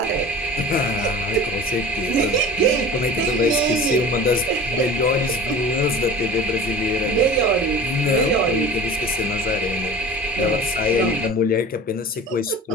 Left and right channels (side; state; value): both; normal; correlation 0.38